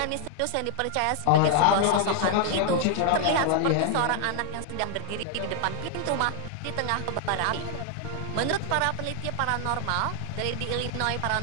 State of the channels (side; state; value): both; different; correlation 0.00